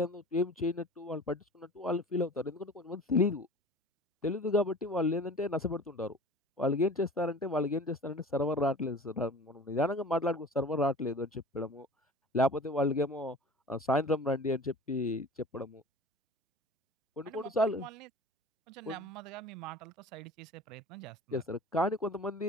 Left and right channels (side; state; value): both; normal; correlation 0.40